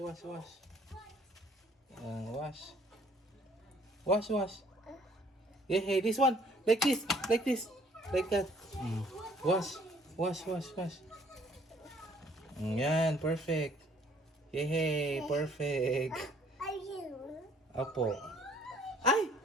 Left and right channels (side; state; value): both; normal; correlation 0.60